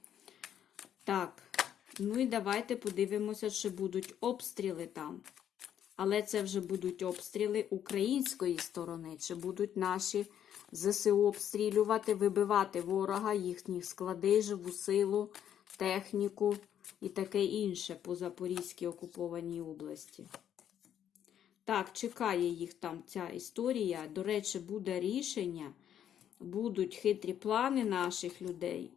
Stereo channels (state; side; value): quieter; right; 9.9 dB